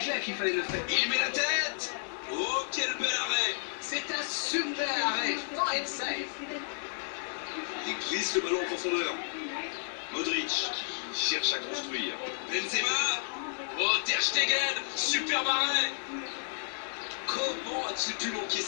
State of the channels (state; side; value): silent; right; digital silence